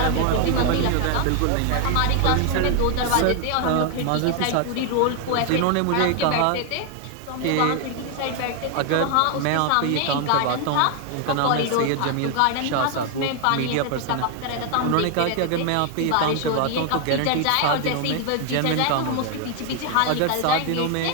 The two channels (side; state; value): both; different; correlation 0.00